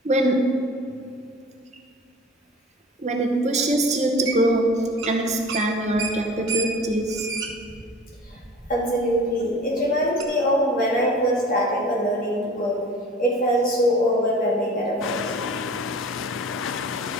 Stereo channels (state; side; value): normal; both; correlation 0.41